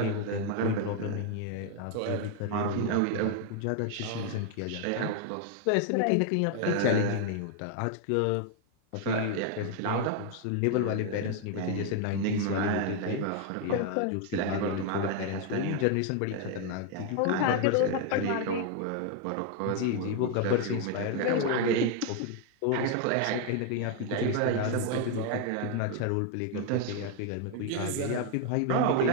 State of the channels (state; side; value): different; both; correlation 0.00